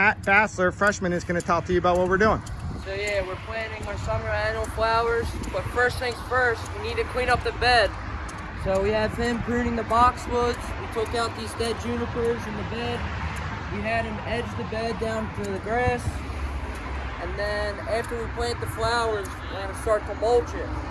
Bassler, freshman, is going to talk to you about what we're doing. So yeah, we're planting our summer annual flowers. But first things first, we need to clean up the bed. So we have him pruning the boxwoods. We took out these dead junipers in the bed. We had him edge the bed down to the grass. And then after we plant the flowers, we're going to start to mulch it.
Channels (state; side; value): identical; both; correlation 1.00